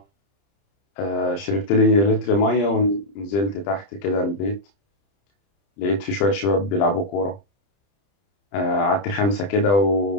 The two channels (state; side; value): late; right; 30 ms